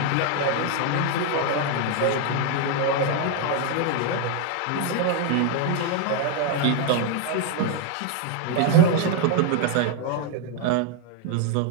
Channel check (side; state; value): both; different; correlation 0.01